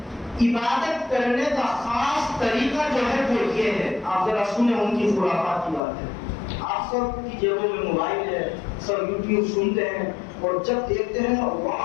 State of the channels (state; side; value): drops out; right; at 5.8 s